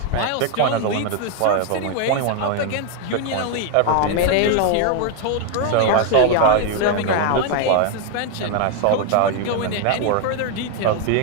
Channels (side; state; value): both; different; correlation 0.00